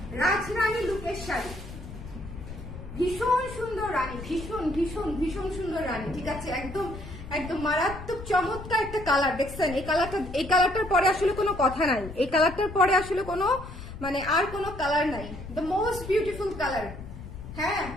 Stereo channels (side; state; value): left; noise; rumble, 12 dB below the sound